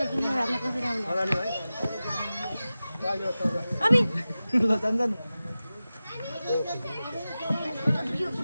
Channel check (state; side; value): inverted; both; correlation -0.95